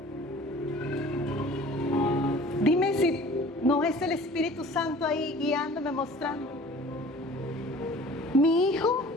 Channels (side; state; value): both; normal; correlation 0.47